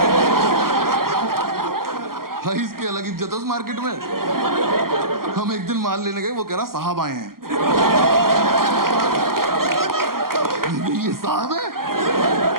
इसकी अलग इज्जत है उस मार्केट में। हम एक दिन माल लेने गए, वो कह रहा साहब आए हैं। ये साहब है?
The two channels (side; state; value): left; late; 0.92 ms